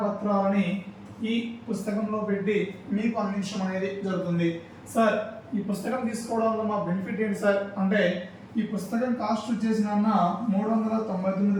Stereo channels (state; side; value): identical; both; correlation 1.00